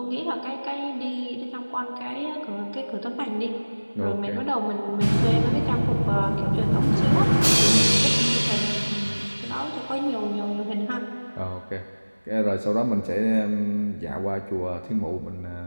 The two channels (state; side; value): inverted; both; correlation -1.00